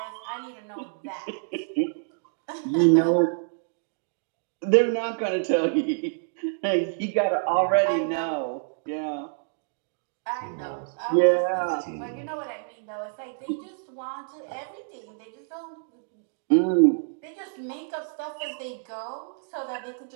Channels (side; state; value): left; silent; digital silence